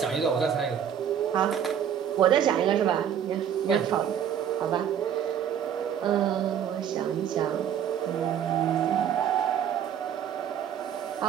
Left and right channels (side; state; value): left; quieter; 9.0 dB